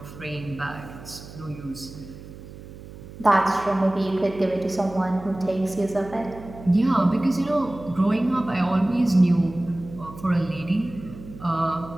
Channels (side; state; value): right; noise; hum, 16 dB below the sound